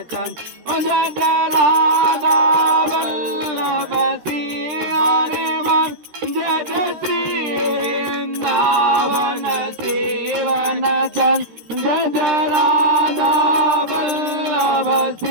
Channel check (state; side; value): late; left; 13 ms